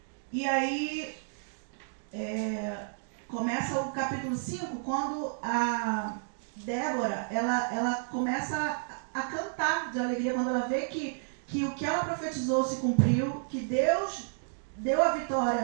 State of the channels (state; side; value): silent; left; digital silence